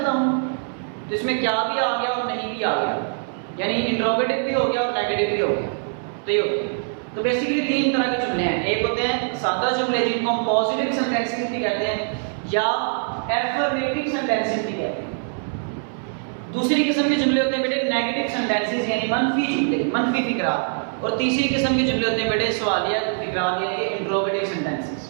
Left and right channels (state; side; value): silent; left; 63 dB below the other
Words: हूँ, तो इसमें क्या भी आ गया और नहीं भी आ गया, यानी इंट्रोगेटिव भी हो गया और नेगेटिव भी हो गया। तो ये होता है। तो बेसिकली 3 तरह के जुमले हैं। एक होते हैं सादा जुमले जिनको हम पॉजिटिव सेंटेंसेस भी कहते हैं या एफर्मेटिव सेंटेंसेस भी कहते हैं। दूसरी किस्म के जुमले होते हैं बेटे नेगेटिव सेंटेंसेस यानी मनफी जुमले, मनफी फिकरात। और तीसरी किस्म के जुमले होते हैं बेटे सवालिया फिकरात यानी इंट्रोगेटिव